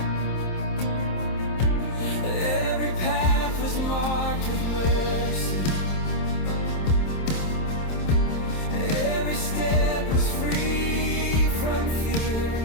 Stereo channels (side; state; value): right; late; 27 ms